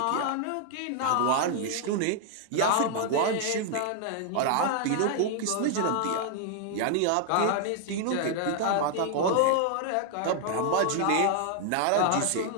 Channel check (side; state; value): both; different; correlation 0.00